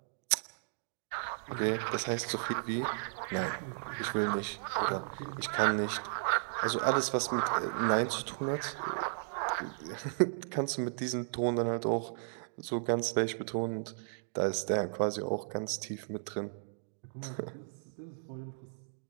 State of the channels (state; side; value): silent; left; digital silence